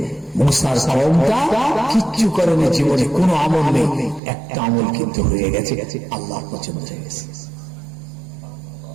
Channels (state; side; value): drops out; left; at 4.2 s